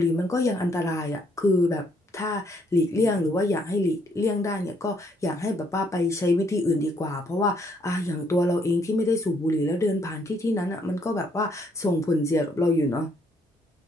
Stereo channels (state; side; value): normal; both; correlation 0.69